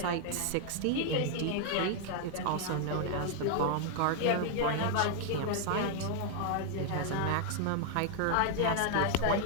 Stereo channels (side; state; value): both; different; correlation 0.00